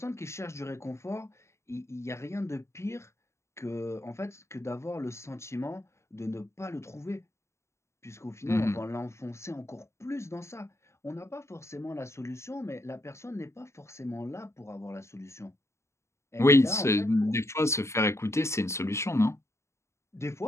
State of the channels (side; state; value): right; late; 0.13 ms